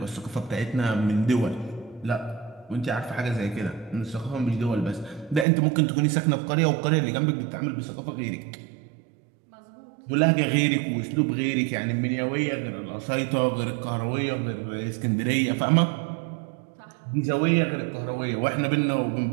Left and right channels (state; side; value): drops out; left; at 5.5 s